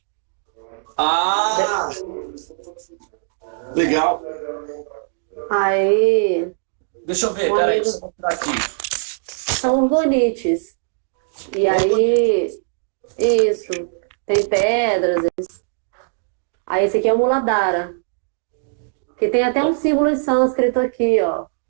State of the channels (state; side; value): silent; left; digital silence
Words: Legal. Aí. Deixa eu ver, peraí, deixa eu mostrar aqui. São orgonites. E aí, isso, tem pedras. Aí esse aqui é o Muladhara. Que tem até um símbolo em sânscrito aqui, ó.